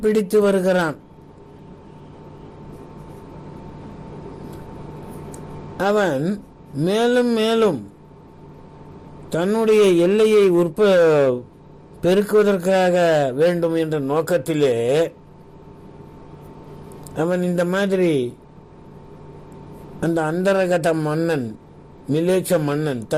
பிடித்து வருகிறான். அவன் மேலும் மேலும் தன்னுடைய எல்லையை பெருக்குவதற்காக வேண்டும் என்ற நோக்கத்திலே அவன் இந்த மாதிரி அந்த அந்தரகத மன்னன் மிலேச்ச மன்னன்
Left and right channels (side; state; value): both; identical; correlation 1.00